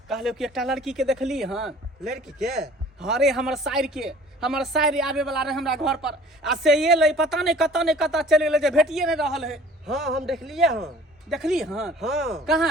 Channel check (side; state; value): both; normal; correlation 0.50